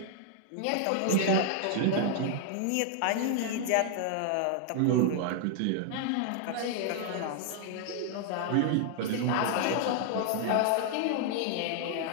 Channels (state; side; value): different; both; correlation 0.00